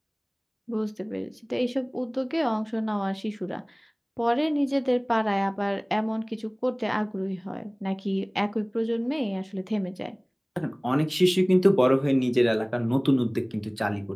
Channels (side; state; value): both; identical; correlation 1.00